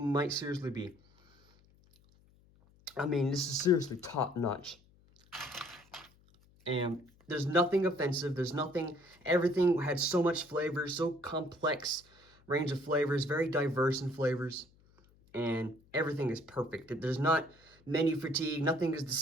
seriously be. I mean, this is seriously top notch. And there's nothing offensive. There's nothing, everything had so much flavor, so complex range of flavors, very diverse in flavors. And everything is perfect. There's not menu fatigue. Nothing is the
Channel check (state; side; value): noise; left; hum, 30 dB below the sound